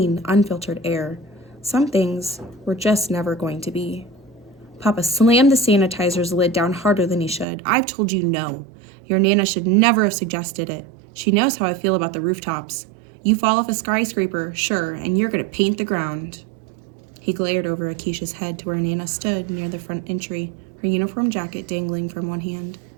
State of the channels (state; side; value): drops out; left; at 7.5 s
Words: unfiltered air. Some things were just never going to be. Papa slammed the sanitizer's lid down harder than he should. I've told you no. Your Nana should never have suggested it. She knows how I feel about the rooftops. You fall off a skyscraper, sure, and you're going to paint the ground. He glared over Akeisha's head to where Nana stood near the front entry, her uniform jacket dangling from one hand.